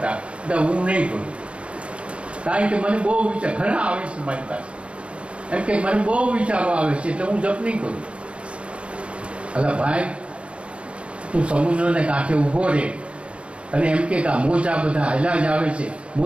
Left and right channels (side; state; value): left; late; 0.059 ms